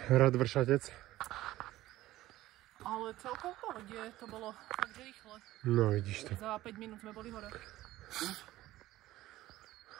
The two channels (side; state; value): left; quieter; 15.9 dB